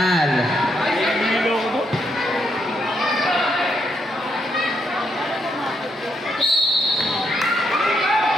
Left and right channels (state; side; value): normal; both; correlation 0.76